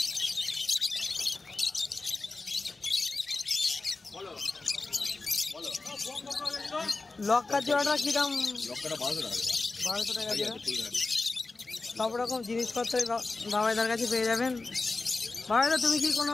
লক্কা জোড়াটা কি দাম? লক্ষ্যটা 1200 টাকা। 1200 টাকা জোড়া। সব রকম জিনিসপত্র বাবাইদার কাছে পেয়ে যাবেন। বাবাইদা তুমি কি কোনো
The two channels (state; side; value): quieter; right; 3.6 dB